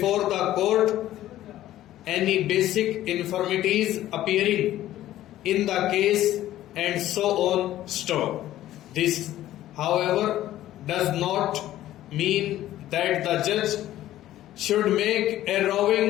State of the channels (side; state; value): right; quieter; 13.8 dB